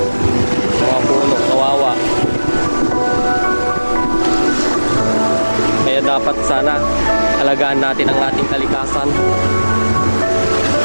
Mga puno, kawawa. Kaya dapat sana alagaan natin ang ating kalikasan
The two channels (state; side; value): inverted; both; correlation -1.00